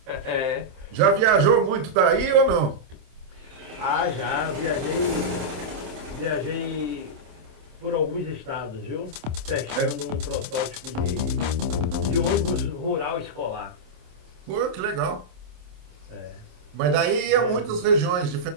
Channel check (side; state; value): left; late; 27 ms